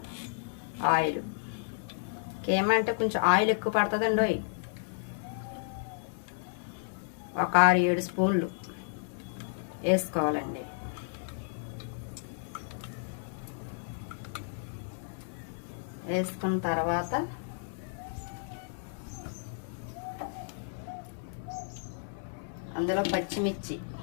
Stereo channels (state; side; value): silent; right; digital silence